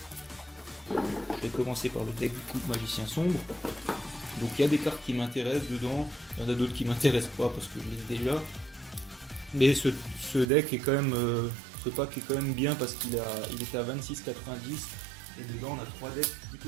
Je vais commencer par le deck du coup Magicien Sombre. Donc il y a des cartes qui m'intéressent dedans, il y en a d'autres qui m'intéressent pas parce que je les ai déjà. Mais ce deck est quand même, ce pack est quand même bien parce il était à 26,90 et dedans on a 3 decks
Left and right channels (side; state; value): left; drops out; at 10.5 s